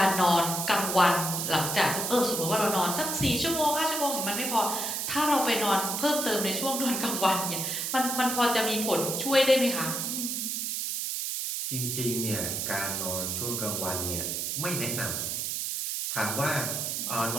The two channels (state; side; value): noise; right; hiss, 2 dB below the sound